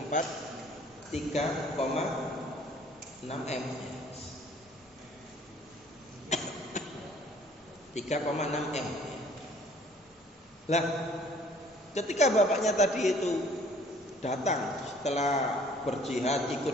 4 3,6 M. 3,6 M. Lah, ketika bapaknya tadi itu datang setelah berjihad,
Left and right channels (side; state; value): both; normal; correlation 0.56